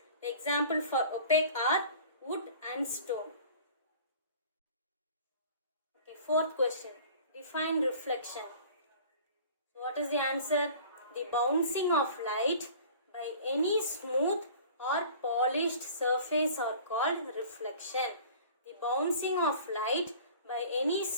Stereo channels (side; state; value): both; inverted; correlation -0.45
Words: The example for opaque are wood and stone. Okay, fourth question. Define reflection. So what is the answer? The bouncing of light by any smooth or polished surface are called reflection. The bouncing of light by any